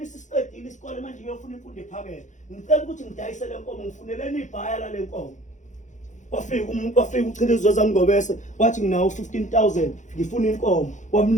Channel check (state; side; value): late; right; 0.35 ms